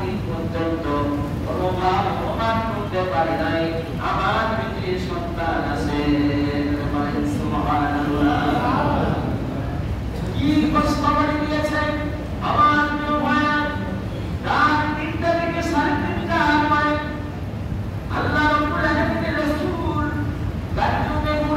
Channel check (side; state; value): both; identical; correlation 1.00